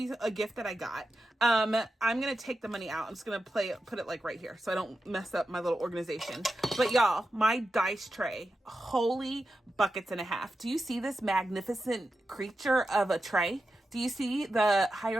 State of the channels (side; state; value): both; normal; correlation 0.90